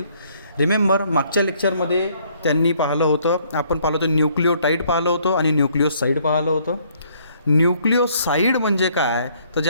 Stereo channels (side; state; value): both; inverted; correlation -0.65